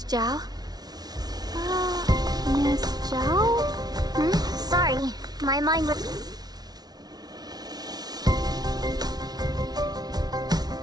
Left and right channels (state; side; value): late; left; 0.19 ms